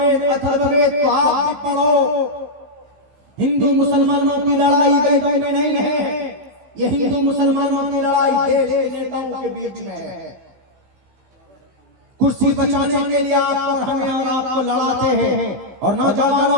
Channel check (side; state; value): left; late; 16 ms